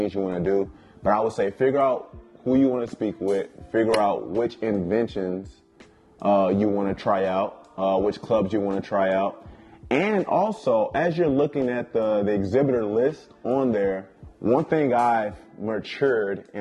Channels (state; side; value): identical; both; correlation 1.00